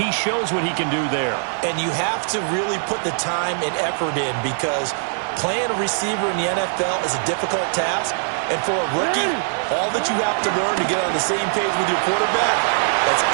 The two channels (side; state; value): left; silent; 63 dB below the other